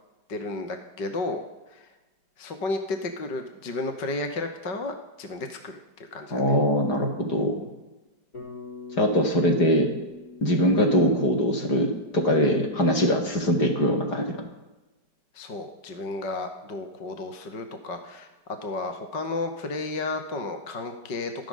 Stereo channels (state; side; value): late; right; 4.9 ms